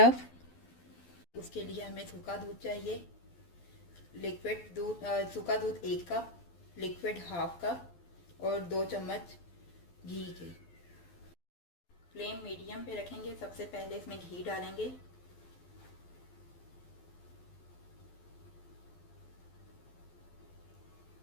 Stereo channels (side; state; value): right; late; 12 ms